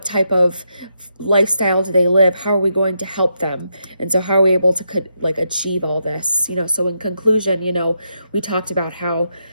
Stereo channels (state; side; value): inverted; both; correlation -0.82